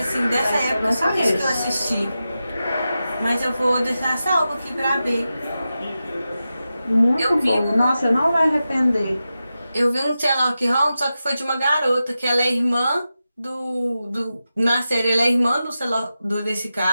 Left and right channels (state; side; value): inverted; both; correlation -0.92